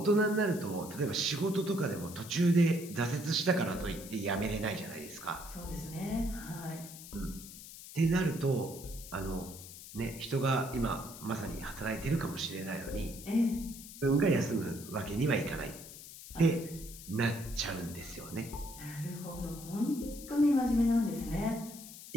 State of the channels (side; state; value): left; noise; hiss, 14 dB below the sound